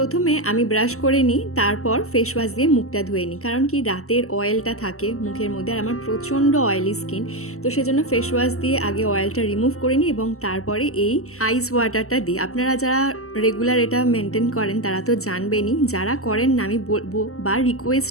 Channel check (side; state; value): right; late; 0.63 ms